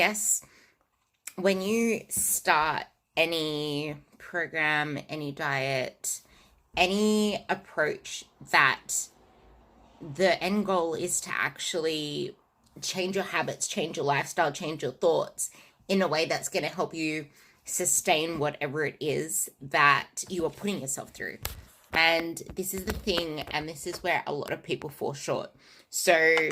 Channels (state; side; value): identical; both; correlation 1.00